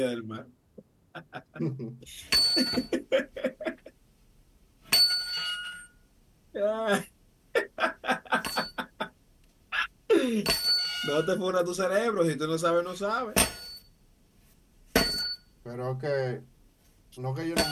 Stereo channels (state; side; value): identical; both; correlation 1.00